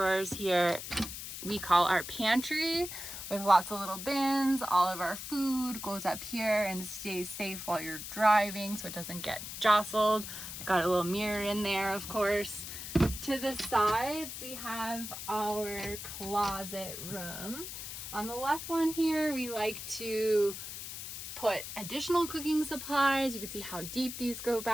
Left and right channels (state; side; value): noise; left; hiss, 8 dB below the sound